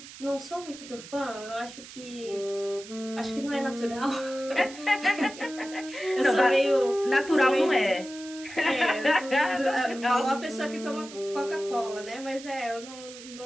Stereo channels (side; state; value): right; noise; hiss, 15 dB below the sound